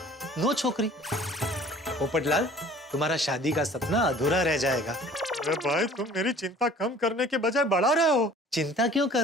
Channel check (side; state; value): both; normal; correlation 0.50